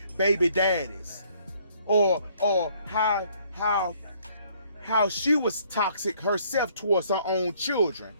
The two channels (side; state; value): both; inverted; correlation -0.63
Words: baby daddies, or how she was toxic herself towards her own children.